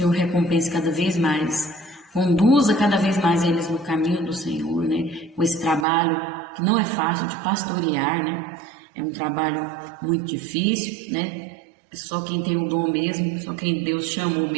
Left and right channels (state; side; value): drops out; left; at 5.9 s